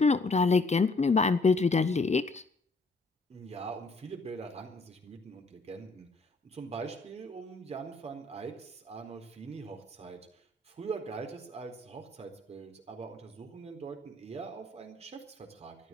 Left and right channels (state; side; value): quieter; right; 3.4 dB